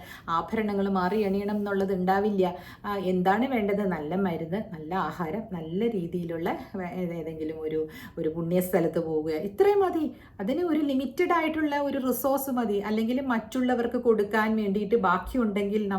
ആഭരണങ്ങൾ മാറി അണിയണം എന്നുള്ളത് ഉണ്ടാവില്ല. എന്താണ് വേണ്ടത്? നല്ല മരുന്ന്, നല്ല ആഹാരം, നല്ല രീതിയിലുള്ള ഏതെങ്കിലും ഒരു പുണ്യസ്ഥലത്ത് പോവുക, ഇത്രയും മതി. അതിന് ഒരു ലിമിറ്റഡ് ആയിട്ടുള്ള ഒരു റിസോഴ്സ് മതി. അല്ലെങ്കിൽ മറ്റുള്ളവർക്ക് കൊടുക്കാൻ വേണ്ടിയിട്ട് ബാക്കിയുണ്ടെങ്കിൽ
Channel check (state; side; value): identical; both; correlation 1.00